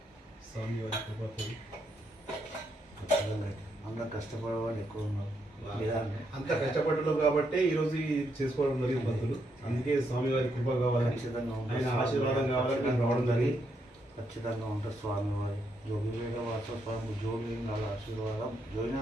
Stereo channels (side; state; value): both; normal; correlation 0.78